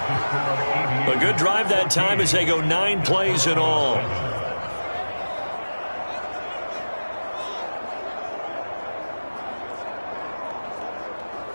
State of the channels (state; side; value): inverted; both; correlation -1.00